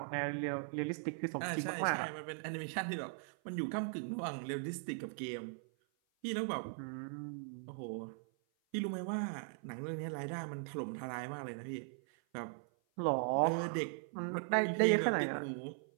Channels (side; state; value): left; silent; 52 dB below the other